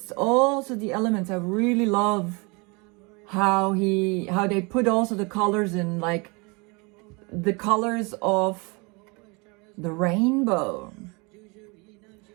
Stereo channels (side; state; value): left; quieter; 29.0 dB